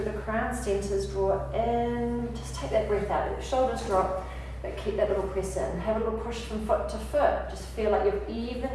the crown, centers, draw in. Just take that breath out. Let the shoulders drop, but keep that little press in. Have a little push from foot to foot. Just feel like you've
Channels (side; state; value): both; identical; correlation 1.00